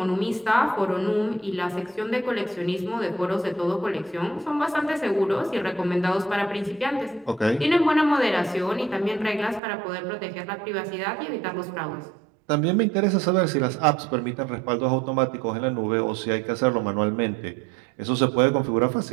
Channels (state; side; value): drops out; left; at 9.6 s